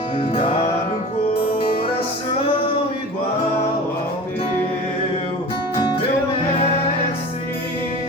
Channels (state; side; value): normal; both; correlation 0.36